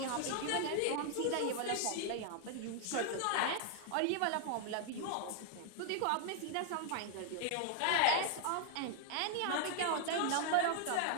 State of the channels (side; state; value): both; different; correlation 0.00